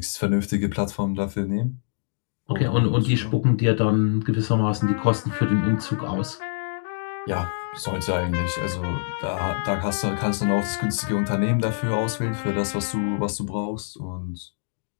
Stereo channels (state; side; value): silent; right; digital silence